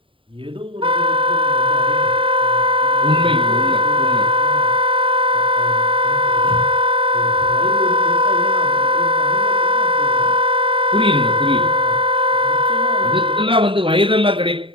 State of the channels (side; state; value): left; late; 0.25 ms